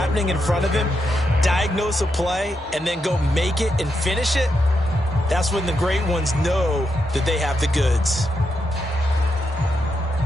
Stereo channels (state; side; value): normal; both; correlation 0.83